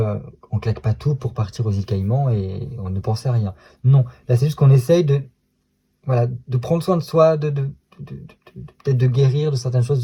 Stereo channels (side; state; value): both; identical; correlation 1.00